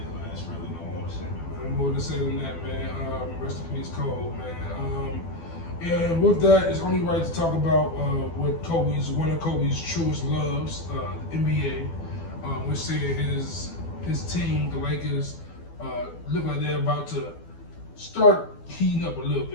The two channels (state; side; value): late; right; 12 ms